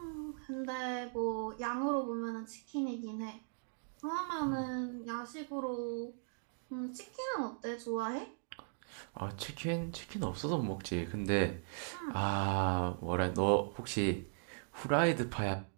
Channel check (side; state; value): left; silent; digital silence